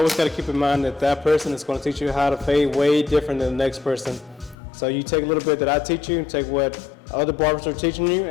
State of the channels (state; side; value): drops out; right; at 4.5 s